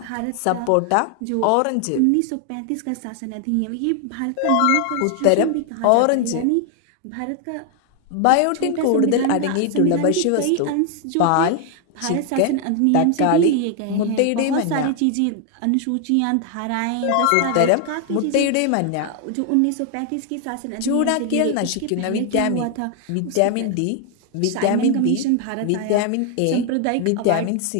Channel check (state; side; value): different; both; correlation 0.00